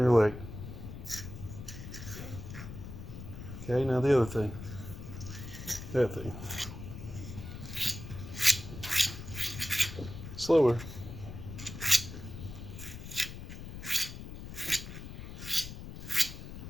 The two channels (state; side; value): noise; left; rumble, 10 dB below the sound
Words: your leg. Okay, now the other thing. That thing. Slower.